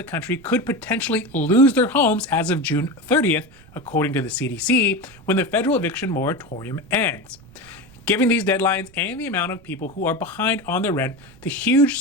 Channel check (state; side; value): noise; right; rumble, 25 dB below the sound